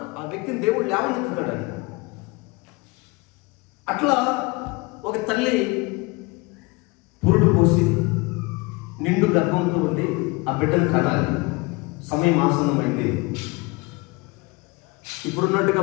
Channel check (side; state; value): right; quieter; 25.6 dB